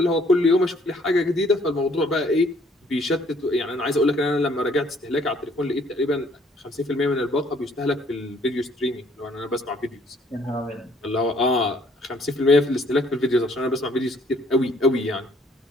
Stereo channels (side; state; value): both; normal; correlation 0.62